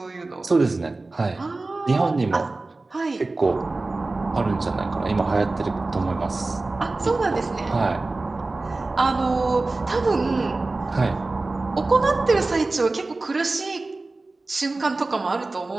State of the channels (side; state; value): left; quieter; 3.3 dB